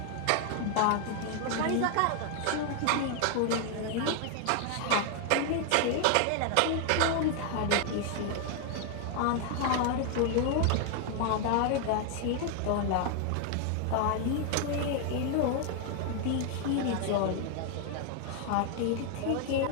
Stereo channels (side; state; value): both; different; correlation 0.00